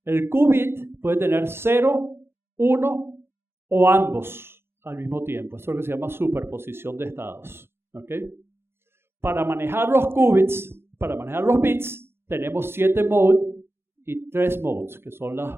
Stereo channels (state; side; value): late; left; 0.11 ms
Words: El qubit puede tener 0, 1 o ambos al mismo tiempo. Eso es lo que se llama superposición de estados, ¿okay? Para manejar los qubits, para manejar los bits, tenemos 7 modes y 3 modes, que son